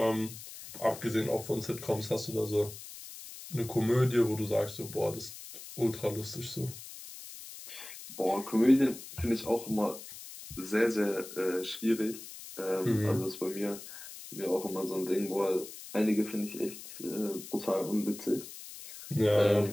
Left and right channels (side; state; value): left; noise; hiss, 13 dB below the sound